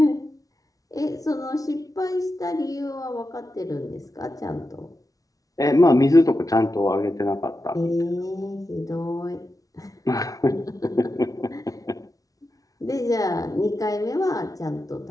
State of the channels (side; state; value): right; late; 0.18 ms